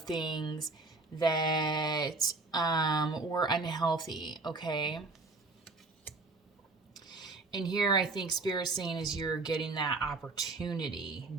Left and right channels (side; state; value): left; quieter; 3.4 dB